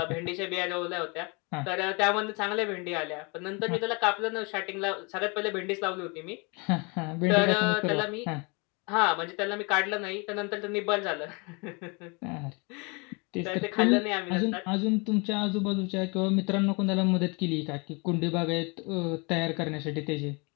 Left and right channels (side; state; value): right; quieter; 30.5 dB